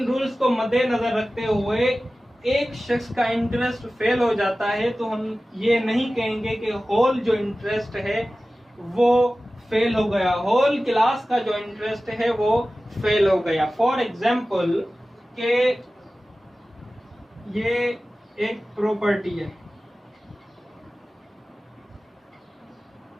रूल्स को मद्देनजर रखते हुए एक शख्स का इंटरेस्ट फेल हो जाता है तो हम ये नहीं कहेंगे कि होल जो इंटरेस्ट है वो फेल हो गया, होल क्लास का जो इंटरेस्ट है वो फेल हो गया। फॉर एग्जाम्पल के ये एक प्रॉपर्टी है,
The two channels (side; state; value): both; normal; correlation 0.96